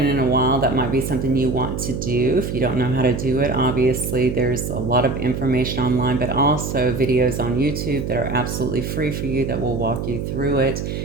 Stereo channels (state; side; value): noise; right; hum, 4 dB below the sound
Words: in a while, that might be something you want to do. If you don't know how to do it, obviously there's a lot of information online, but also videos on YouTube that are absolutely free for you that will walk you through it,